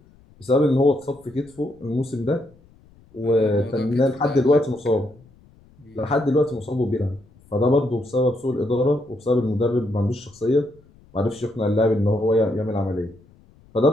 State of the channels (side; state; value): left; noise; rumble, 28 dB below the sound